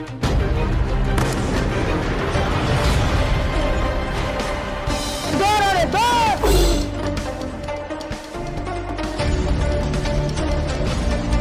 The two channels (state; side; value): identical; both; correlation 1.00